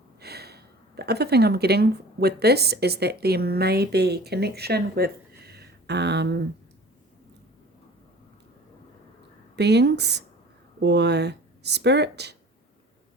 The other thing I'm getting with this is that there may be connection with beings or spirit,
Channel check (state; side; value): normal; both; correlation 0.44